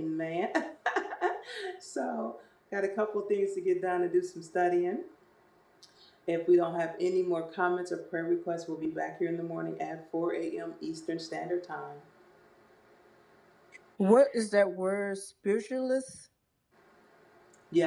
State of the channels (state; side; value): identical; both; correlation 1.00